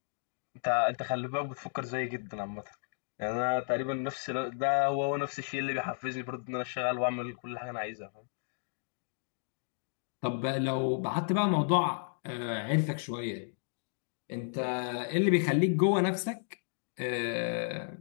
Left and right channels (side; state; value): right; silent; digital silence